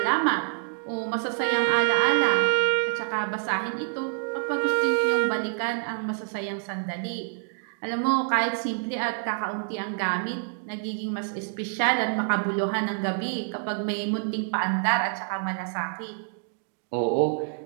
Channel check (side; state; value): left; silent; digital silence